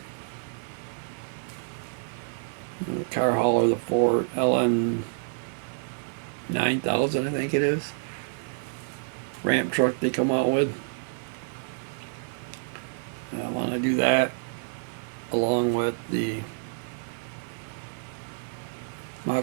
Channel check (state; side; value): silent; left; digital silence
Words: The car hauler, the Ford LN 9000, I think it is. Ramp truck they come out with. I want to do that along with the